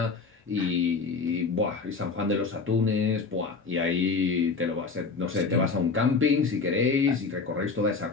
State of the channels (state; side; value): quieter; right; 4.6 dB